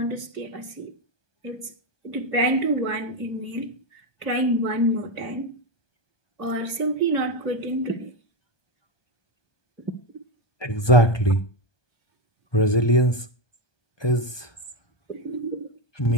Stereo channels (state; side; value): late; right; 1.2 ms